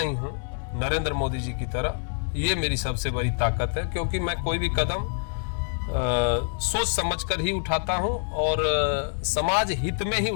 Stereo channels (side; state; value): right; silent; digital silence